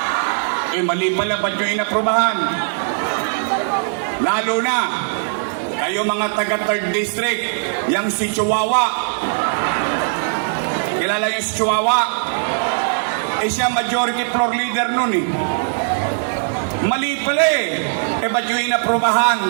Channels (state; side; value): silent; left; 66 dB below the other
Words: Eh mali pala ba't nyo inaprubahan? Lalo na, kayo mga taga 3rd District, yang si Chihuahua. Kilala yung si Chihuahua? Eh siya majority floor leader nun eh. Mali pala eh. Eh ba't yung inaprubahan?